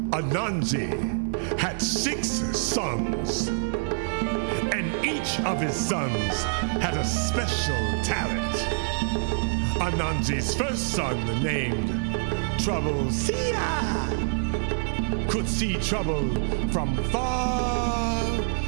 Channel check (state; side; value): silent; left; 61 dB below the other